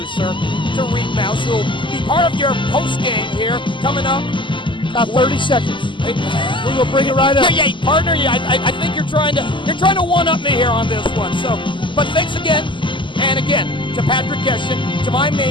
to Reed Mouse, who will be part of your post game here coming up. 30 seconds. We're gonna bring it right up. Yeah, partner. Yeah, I think you're trying to one up me here on this one. So, but thanks again, and again to Patrick Geshin, to my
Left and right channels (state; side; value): late; right; 0.24 ms